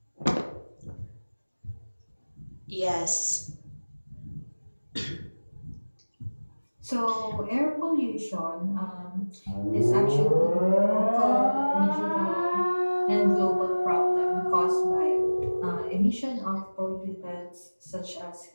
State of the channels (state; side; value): inverted; both; correlation -1.00